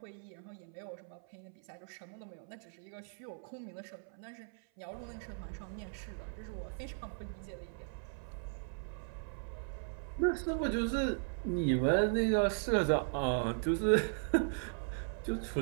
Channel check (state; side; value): silent; left; 53 dB below the other